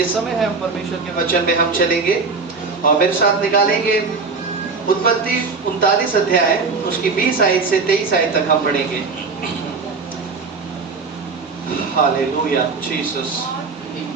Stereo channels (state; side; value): quieter; left; 4.5 dB